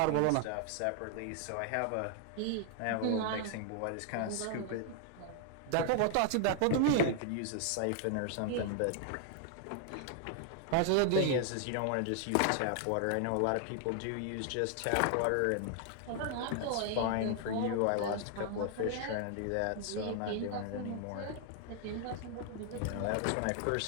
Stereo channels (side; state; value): both; different; correlation 0.00